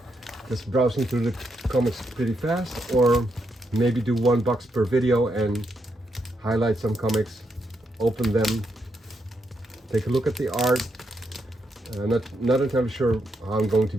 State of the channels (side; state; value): both; normal; correlation 0.80